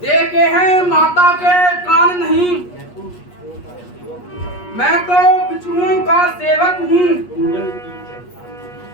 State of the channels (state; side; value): late; right; 8.4 ms